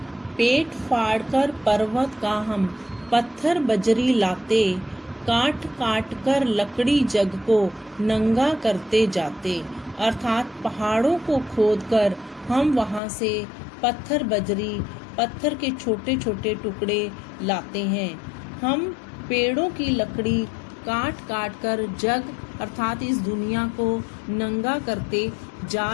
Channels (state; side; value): drops out; right; at 13.0 s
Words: पेट फाड़कर पर्वत का हम पत्थर बजरी लाते, काट काट कर लकड़ी जग को नंगा करते जाते। अर्थात पहाड़ों को खोदकर हम वहां से पत्थर बजरी, पत्थर के छोटे छोटे टुकड़े लाते हैं। हम पेड़ों की लकड़ी काट काट कर जग अर्थात इस दुनिया को नंगा करते